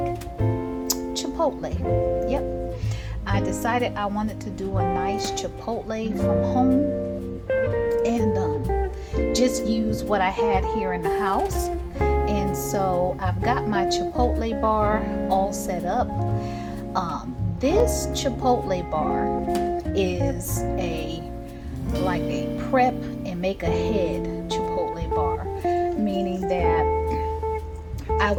Chipotle. Yep. I decided I wanted to do a nice Chipotle from home and just use what I had here in the house. And so I've got my Chipotle bar all set up. This Chipotle bar is like a prep and make ahead Chipotle bar, meaning that I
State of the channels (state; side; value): identical; both; correlation 1.00